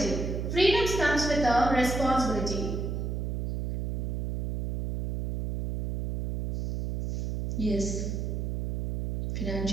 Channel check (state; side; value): noise; right; hum, 2 dB below the sound